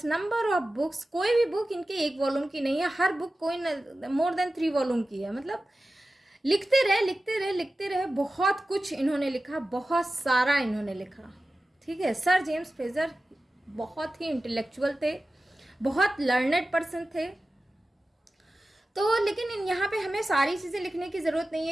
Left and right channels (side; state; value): both; normal; correlation 0.95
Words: number of books. कोई भी बुक इनके एक वॉल्यूम की नहीं है, हर बुक कोई मोर देन 3 वॉल्यूम की है। मतलब लिखते रहे, बहुत कुछ इन्होंने लिखा, बहुत सारा इन्होंने लिखा। ठीक है, सर जेम्स फ्रेजर बहुत ही इंटेलेक्चुअल थे, बहुत लर्नेड पर्सन थे। तो लेकिन यहाँ पे हमें सारी चीज़ें लिखने की ज़रूरत नहीं